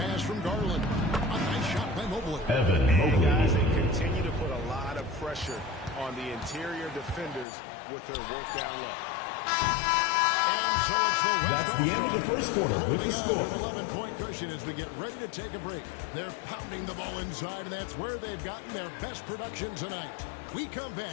from Garland. A nice shot by Mobley. Evan Mobley. Guys, they continue to put a lot of pressure on the interior defenders with their work down low. And so it's the West That's the end of the first quarter with the score. An 11-point cushion as we get ready to take a break. They're pounding the ball inside, and that's where they've gotten their best production tonight. We come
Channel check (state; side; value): drops out; right; at 7.5 s